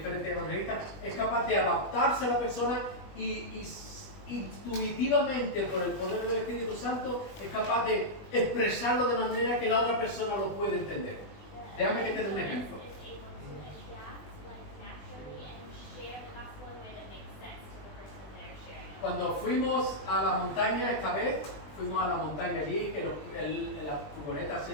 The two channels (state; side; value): late; right; 20 ms